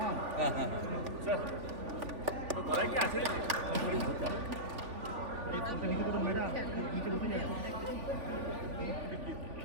স্যার তো গলায় কি আছে?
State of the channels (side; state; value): left; late; 3.5 ms